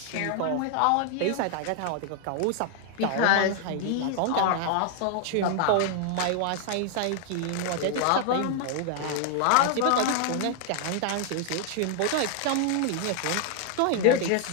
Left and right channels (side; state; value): both; different; correlation 0.00